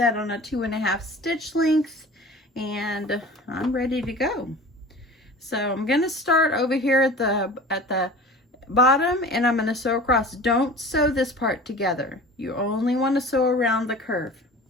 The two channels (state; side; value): normal; both; correlation 0.40